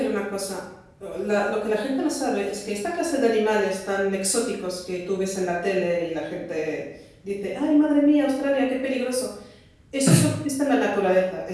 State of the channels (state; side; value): identical; both; correlation 1.00